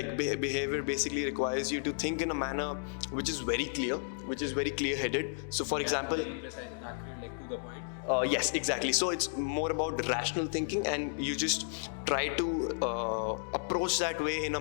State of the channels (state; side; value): silent; right; digital silence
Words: basically requires you to think in a manner which is very clear, which is very clear-headed. So for example, Very precise and accurate, like to the point. yes, exactly. So it's more about rational thinking, and you just try to approach that way in a